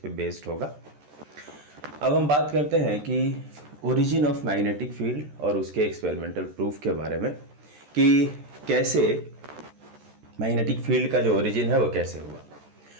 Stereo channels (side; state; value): left; late; 14 ms